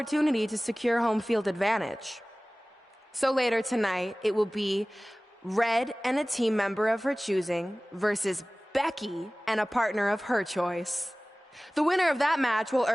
to secure home field advantage. So later tonight, it will be Red and a team member of her choosing versus Becky and a partner of her choice. The winner of that match will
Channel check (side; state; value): both; normal; correlation 0.98